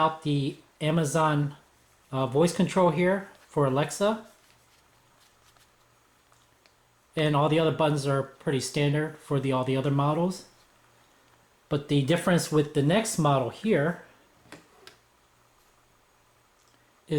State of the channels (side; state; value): both; identical; correlation 1.00